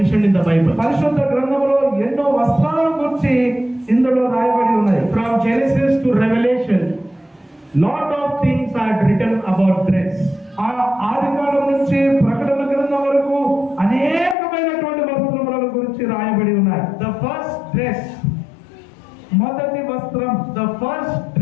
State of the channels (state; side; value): drops out; right; at 14.4 s